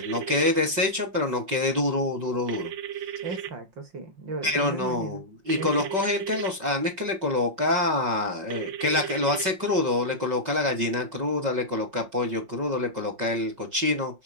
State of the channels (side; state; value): left; late; 5.2 ms